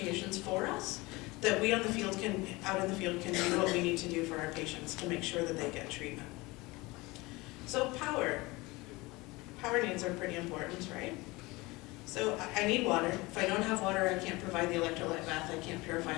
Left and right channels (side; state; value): right; quieter; 22.6 dB